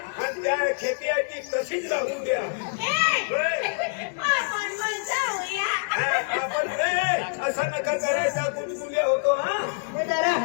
त्या खेती आहे ती तशीच राहून द्या आपण असं नका करायचा कुणकुले होतो हा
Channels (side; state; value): right; silent; digital silence